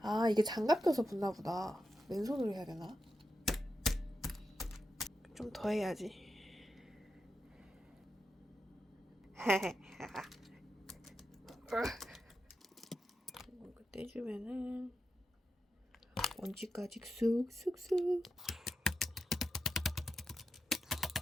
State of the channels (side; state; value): both; normal; correlation 0.88